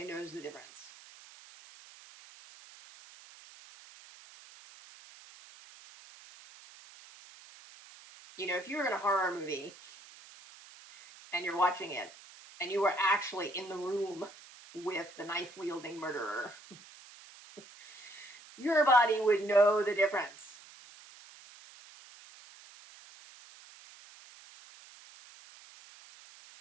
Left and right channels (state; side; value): noise; right; hiss, 20 dB below the sound